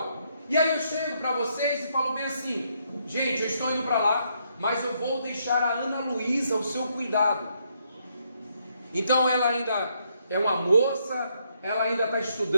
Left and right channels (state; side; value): inverted; both; correlation -0.74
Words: E aí eu chego para vocês e falo bem assim: gente, eu estou indo para lá, mas eu vou deixar a Ana Luísa ao seu cuidado. Então ela ainda é uma moça, ela ainda está